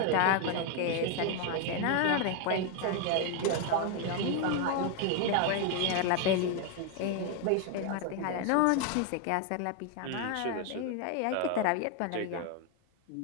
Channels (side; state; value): both; different; correlation 0.01